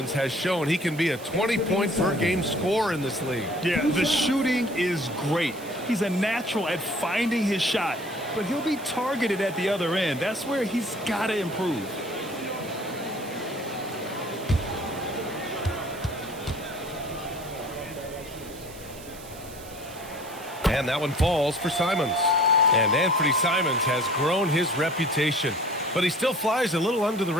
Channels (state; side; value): noise; right; hiss, 18 dB below the sound